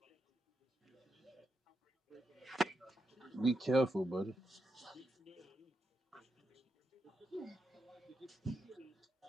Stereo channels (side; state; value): both; normal; correlation 0.84